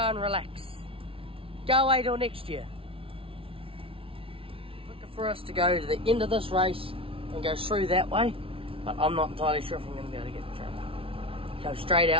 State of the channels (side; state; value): left; late; 0.26 ms